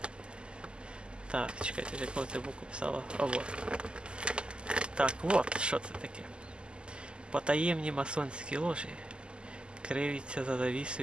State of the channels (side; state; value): left; late; 0.050 ms